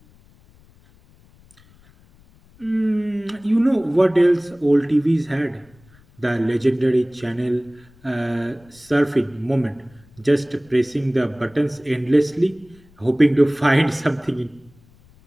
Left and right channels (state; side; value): noise; left; rumble, 29 dB below the sound